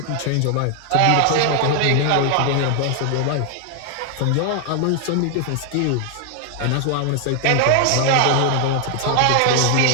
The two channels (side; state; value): both; different; correlation 0.00